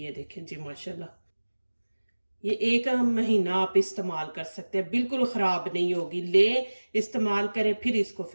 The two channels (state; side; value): inverted; both; correlation -1.00